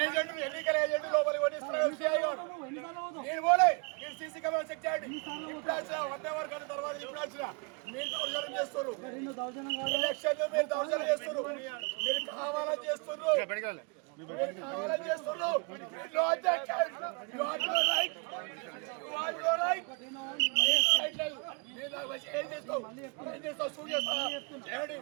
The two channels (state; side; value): quieter; left; 34.1 dB